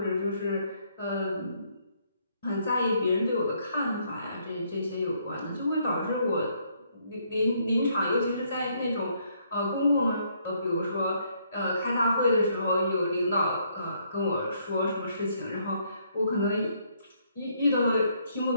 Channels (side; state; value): both; inverted; correlation -0.70